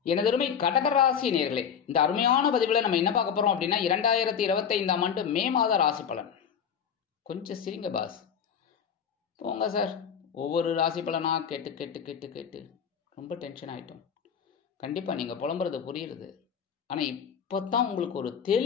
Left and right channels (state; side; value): quieter; right; 7.6 dB